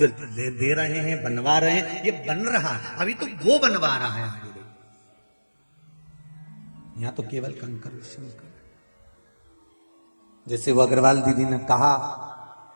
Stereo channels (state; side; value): inverted; both; correlation -1.00